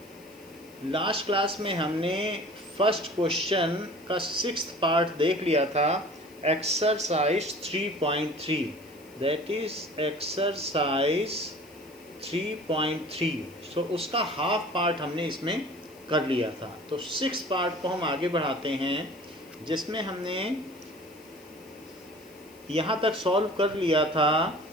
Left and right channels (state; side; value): noise; left; hiss, 26 dB below the sound